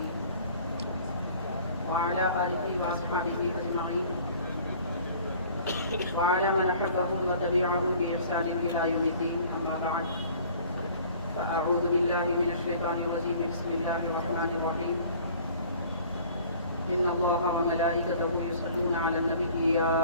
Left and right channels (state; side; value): inverted; both; correlation -0.50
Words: وعلى آله وأصحابه أجمعين وعلى من أحبهم وتبعهم بإحسان إلى يوم الدين. أما بعد فأعوذ بالله من الشيطان الرجيم. بسم الله الرحمن الرحيم. إن الله وملائكته يصلون على النبي يا